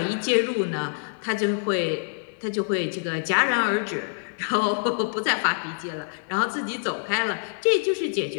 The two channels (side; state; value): right; silent; 61 dB below the other